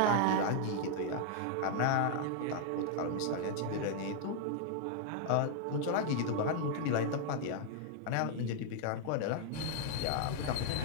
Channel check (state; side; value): different; both; correlation 0.00